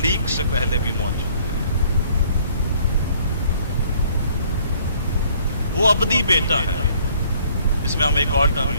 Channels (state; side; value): inverted; both; correlation -0.59